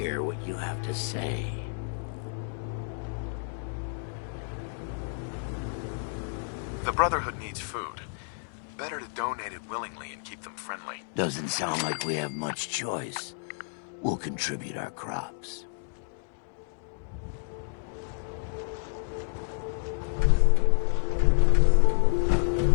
what you have to say? The Brotherhood needs food. Better to donate it willingly and keep them friendly. Doesn't sound like we have much choice. We'll contribute our crops.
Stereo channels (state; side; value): silent; right; digital silence